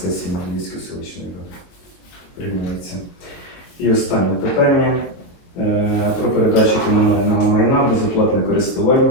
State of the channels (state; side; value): late; right; 22 ms